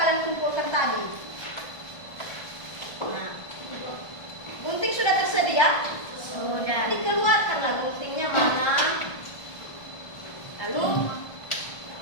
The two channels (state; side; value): late; right; 1.4 ms